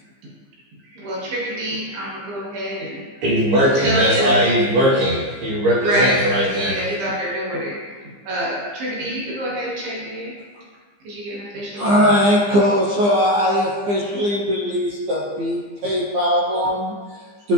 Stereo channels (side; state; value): left; late; 15 ms